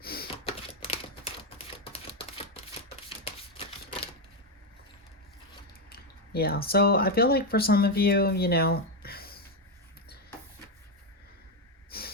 Yeah, so I feel like for some of you, you know,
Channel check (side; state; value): both; normal; correlation 0.06